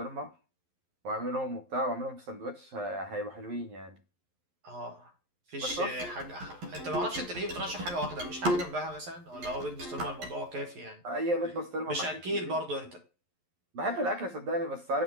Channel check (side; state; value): left; late; 11 ms